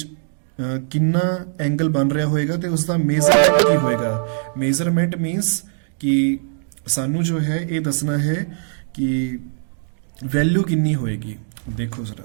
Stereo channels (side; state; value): left; silent; digital silence